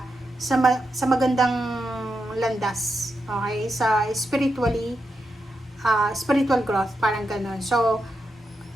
sa magandang landas. Okay? Sa spiritual growth, parang ganun. So,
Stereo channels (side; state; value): both; normal; correlation 0.86